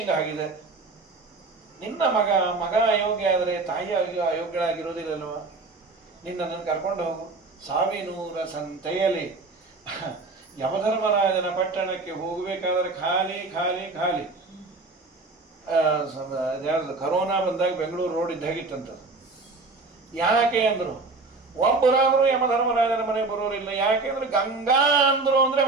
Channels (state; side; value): quieter; left; 3.7 dB